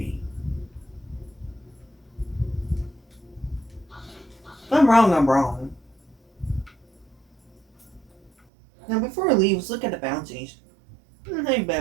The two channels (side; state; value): left; drops out; at 8.3 s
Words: If I'm wrong, I'm wrong. Now before we leave, let's look at the bounties. Ain't